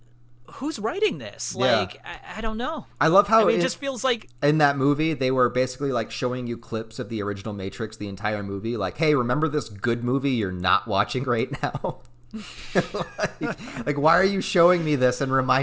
who's writing this? Like, I don't know. I love how it just feels like in that movie they were basically like showing you clips of the original Matrix the entire movie. Like, hey, remember this good movie you're not watching right now? like, why are you showing me this and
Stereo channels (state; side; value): identical; both; correlation 1.00